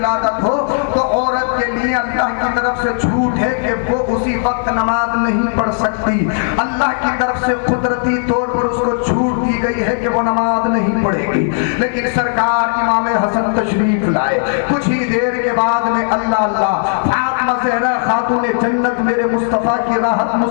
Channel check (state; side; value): silent; right; 62 dB below the other